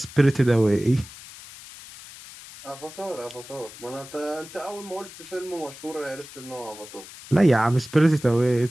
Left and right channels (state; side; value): noise; left; hiss, 17 dB below the sound